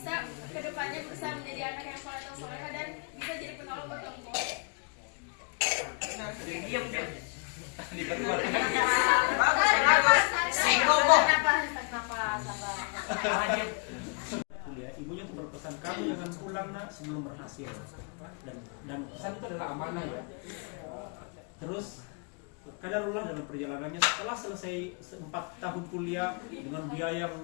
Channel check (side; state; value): right; quieter; 37.3 dB